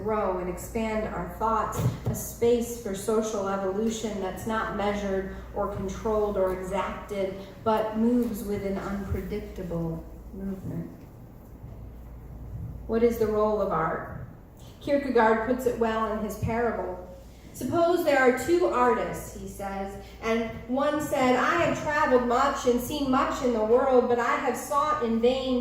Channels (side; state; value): both; identical; correlation 1.00